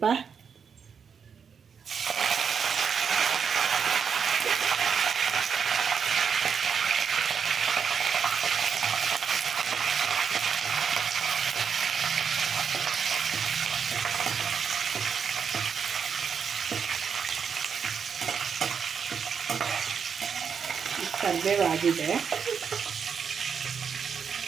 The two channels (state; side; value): quieter; left; 6.7 dB